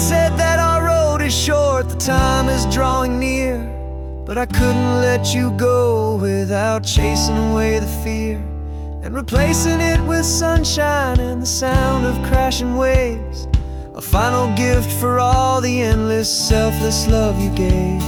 that our road is short, the time is drawing near, but I couldn't let you go without chasing away the fear and replacing it with sunshine and the sound of crashing waves, a final gift for all the endless, selfless love you gave.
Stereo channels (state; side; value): identical; both; correlation 1.00